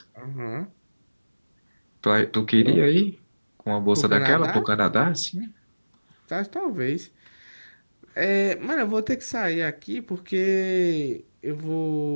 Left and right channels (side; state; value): both; inverted; correlation -1.00